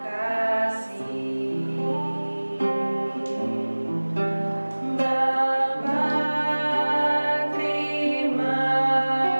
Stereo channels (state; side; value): inverted; both; correlation -1.00